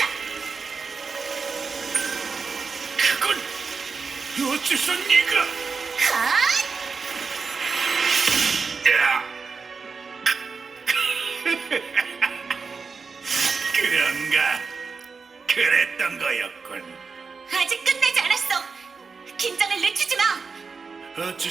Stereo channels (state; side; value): quieter; left; 5.0 dB